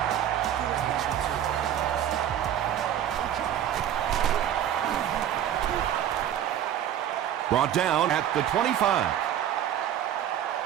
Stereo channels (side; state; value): left; quieter; 10.6 dB